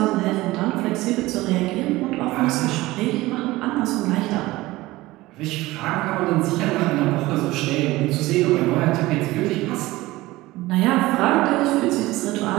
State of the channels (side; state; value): left; quieter; 18.9 dB